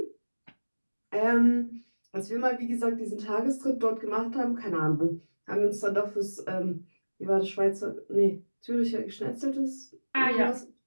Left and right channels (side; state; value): both; inverted; correlation -1.00